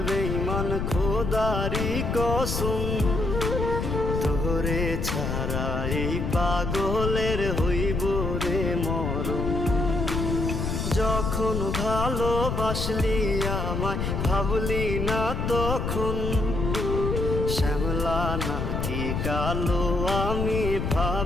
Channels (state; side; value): noise; left; rumble, 1 dB below the sound